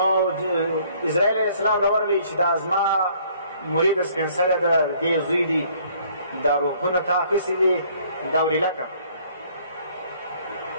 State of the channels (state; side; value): inverted; both; correlation -0.60